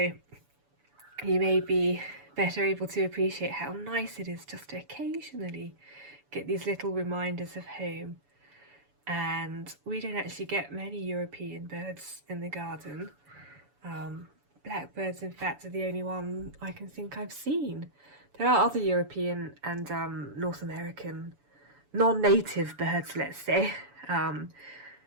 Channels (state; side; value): late; left; 7.0 ms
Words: you may be better able to appreciate how nice it is just to occasionally get these little reminders of home. And we don't actually get many European birds in the garden. Blackbirds, in fact, are the only one I can think I've seen. There are other European and North American non-native birds, let's say,